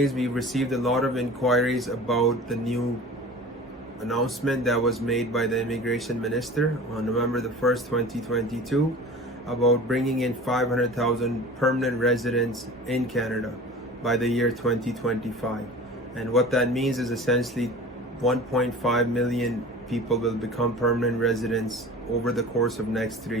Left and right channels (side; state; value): both; normal; correlation 0.39